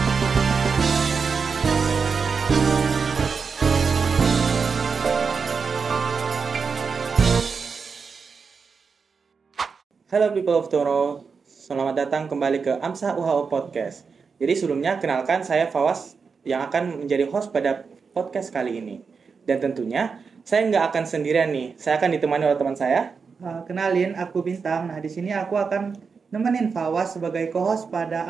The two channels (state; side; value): quieter; left; 5.4 dB